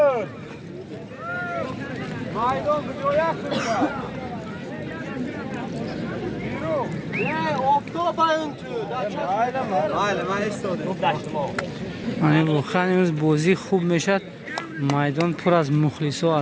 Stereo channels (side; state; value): both; identical; correlation 1.00